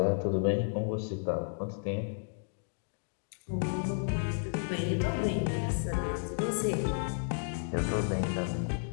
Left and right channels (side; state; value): right; silent; digital silence